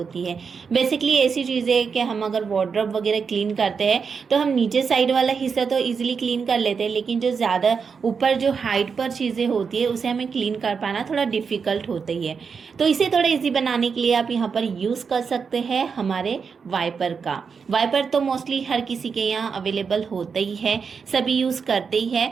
है। बेसिकली ऐसी चीज़ें है कि हम अगर वार्डरोब वगैरह क्लीन करते हैं तो हम नीचे साइड वाला हिस्सा तो इजीली क्लीन कर लेते हैं, लेकिन जो ज़्यादा ऊपर जो हाइट पर चीज़ें होती है उसे हमें क्लीन कर पाना थोड़ा डिफ़िकल्ट होता ही है। तो इसे थोड़ा ईजी बनाने के लिए आप यहाँ पर यूज़ कर सकते हैं हमारे वाइपर का। वाइपर तो मोस्टली हर किसी के यहाँ अवेलेबल होता ही है, सभी यूज़ करते ही है।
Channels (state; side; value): quieter; left; 5.8 dB